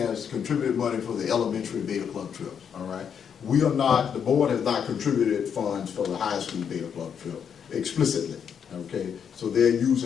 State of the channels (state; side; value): quieter; right; 7.6 dB